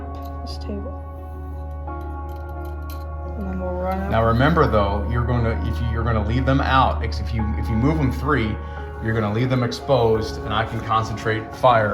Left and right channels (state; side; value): identical; both; correlation 1.00